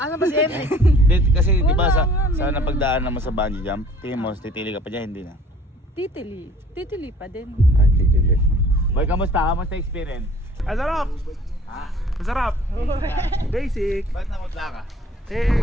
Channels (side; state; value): both; normal; correlation 0.52